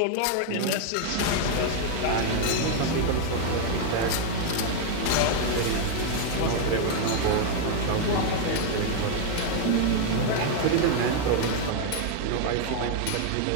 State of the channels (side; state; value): both; different; correlation 0.00